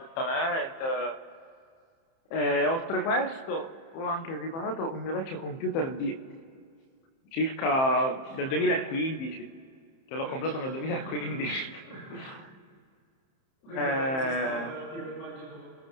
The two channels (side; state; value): right; late; 30 ms